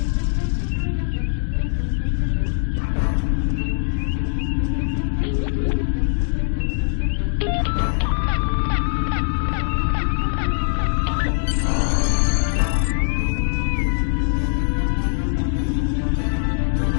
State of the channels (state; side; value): silent; right; 65 dB below the other